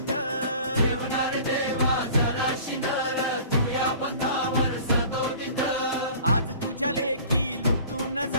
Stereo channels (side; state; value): both; inverted; correlation -0.45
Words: ठेवणार देवा जराशी नर तुझ्या भक्तावर सदोदित आज तुझ्या लेखी लुटून